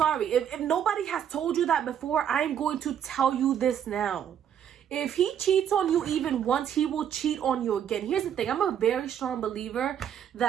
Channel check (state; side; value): quieter; left; 9.1 dB